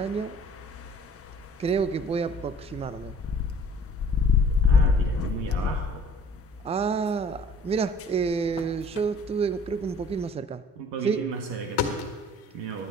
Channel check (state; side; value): normal; both; correlation 0.51